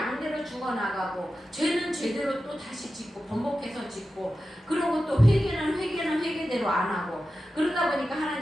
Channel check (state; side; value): normal; both; correlation 0.92